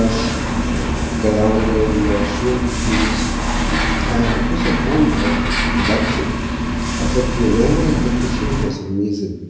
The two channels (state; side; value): identical; both; correlation 1.00